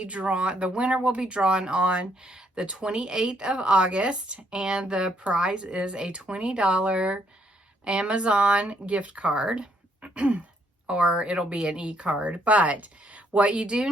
drawn, the winner will be drawn on the 28th of August, and the prize is a $20 Amazon gift card, or it'll be an e-card. But what you do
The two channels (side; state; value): both; normal; correlation 0.71